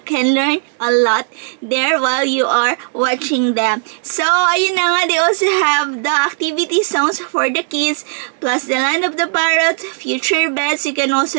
can learn a lot there while you are watching them. So, ayun na nga, they also have the activity zones for the kids, plus the land of the parrot, future beds. You can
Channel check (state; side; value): silent; left; digital silence